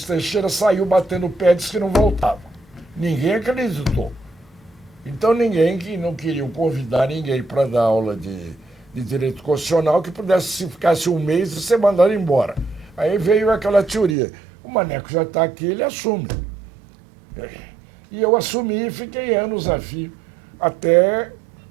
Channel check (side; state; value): left; drops out; at 14.2 s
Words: Teixeira saiu batendo o pé e disse que não voltava. Ninguém acreditou. Então ninguém que não queria convidar ninguém para dar aula de direito constitucional que pudesse, se ficasse um mês, ser mandado embora. Aí veio aquela teoria. O Maneco já está aqui, ele assume. E eu assumi e fiquei anos a fio, até